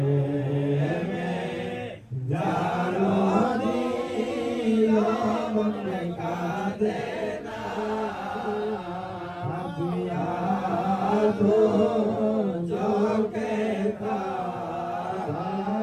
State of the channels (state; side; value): identical; both; correlation 1.00